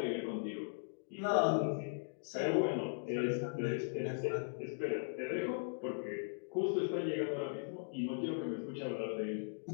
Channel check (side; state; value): right; silent; digital silence